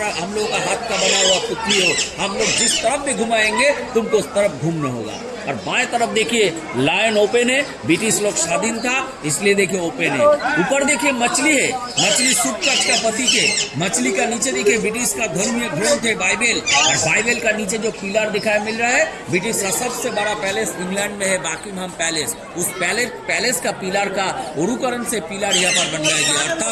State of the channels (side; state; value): both; identical; correlation 1.00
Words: लोग का हाथ का बना हुआ पुतली हो, हम लोग जिस तरफ भी घुमाएंगे तुमको उस तरफ घूमना होगा। और बाएं तरफ देखिए लायन ओपन है, ब्रिटिश लोग स्वाधीन था इसलिए देखिए ओपन है। ऊपर देखिए मछली है, मछली सूटकाच का प्रतीक है। मछली का नीचे देखिए ब्रिटिश का धर्मीय ग्रंथ है बाइबल, और बाइबल का नीचे जो पिलर दिखाई मिल रहा है ब्रिटिश का सबसे बड़ा पैलेस इंग्लैंड में है बकिंघम पैलेस। उस पैलेस का पिलर का उरुकरण से पिलर यहाँ पर बनाया गया,